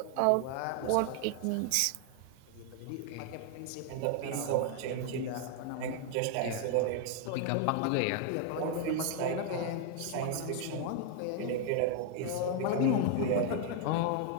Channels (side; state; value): both; different; correlation 0.00